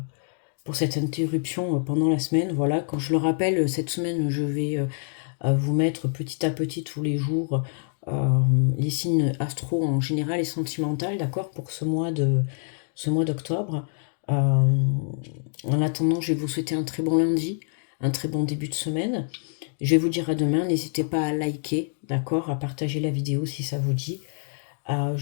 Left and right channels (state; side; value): silent; right; 61 dB below the other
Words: interruption pendant la semaine. Voilà, quand je le rappelle, cette semaine, je vais vous mettre petit à petit tous les jours les signes astro en général et sentimental, d'accord, pour ce mois d'octobre. En attendant, je vais vous souhaiter un très bon lundi, un très bon début de semaine. Je vais vous dire à demain, n'hésitez pas à liker, d'accord, à partager la vidéo si ça vous dit.